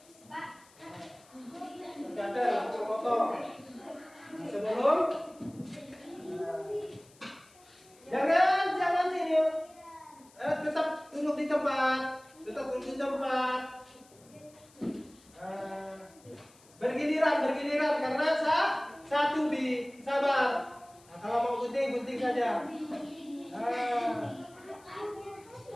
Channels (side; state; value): left; noise; hiss, 27 dB below the sound